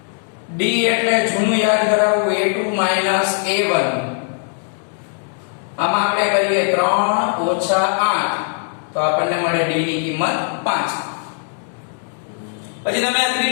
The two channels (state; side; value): silent; right; 62 dB below the other